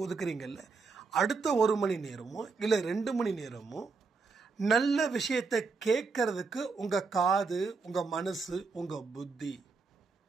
ஒதுக்குறீங்கல்ல, அடுத்த 1 மணி நேரமோ இல்லை 2 மணி நேரமோ நல்ல விஷயத்தை கேட்கறதுக்கு உங்கள் காது, உங்கள் மனசு, உங்கள் புத்தி,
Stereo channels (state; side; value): quieter; left; 4.5 dB